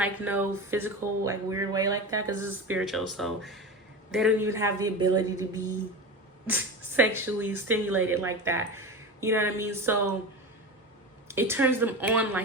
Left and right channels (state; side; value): normal; both; correlation 0.26